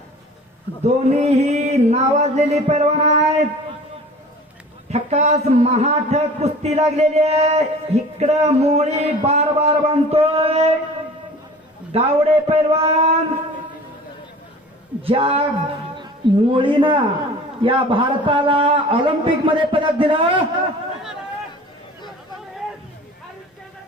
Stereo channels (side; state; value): both; normal; correlation 0.43